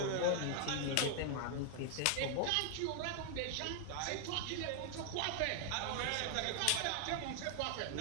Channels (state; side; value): different; both; correlation 0.00